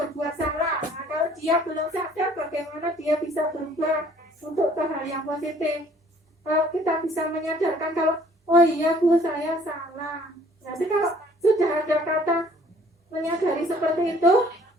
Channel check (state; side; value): normal; both; correlation 0.57